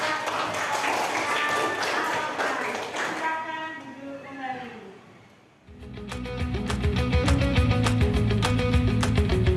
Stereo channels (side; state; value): both; identical; correlation 1.00